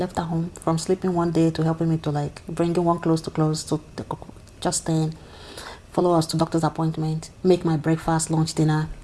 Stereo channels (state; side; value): identical; both; correlation 1.00